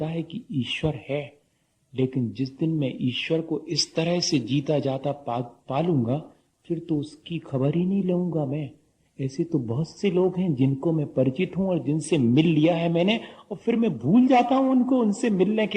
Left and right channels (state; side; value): identical; both; correlation 1.00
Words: है कि ईश्वर है। लेकिन जिस दिन मैं ईश्वर को इस तरह से जीता जाता पालूंगा, फिर तो उसकी खबर ही नहीं लूंगा मैं। ऐसे तो बहुत से लोग हैं जिनको मैं परिचित हूं और जिनसे मिल लिया है मैंने, और फिर मैं भूल जाता हूं उनको। उनसे मिलने